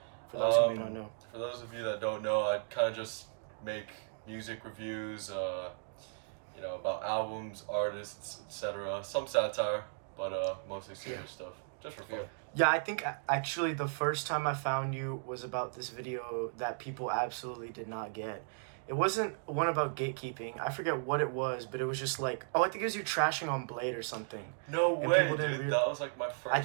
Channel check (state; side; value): silent; left; digital silence